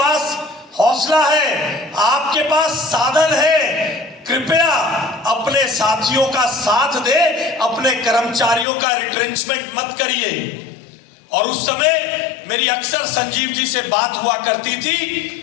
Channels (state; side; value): drops out; right; at 8.7 s